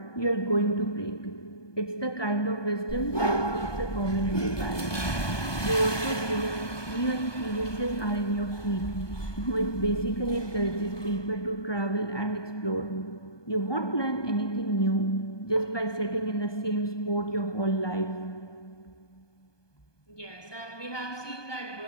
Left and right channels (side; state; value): right; late; 1.2 ms